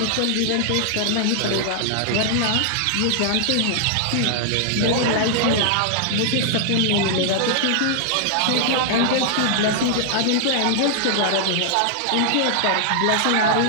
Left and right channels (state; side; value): different; both; correlation -0.01